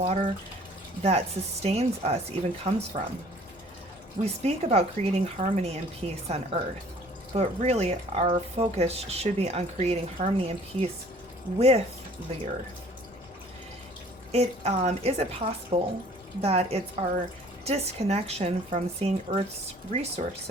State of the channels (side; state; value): both; normal; correlation 0.53